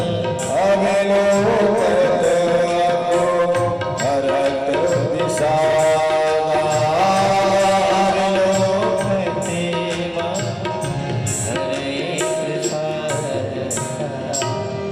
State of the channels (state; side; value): identical; both; correlation 1.00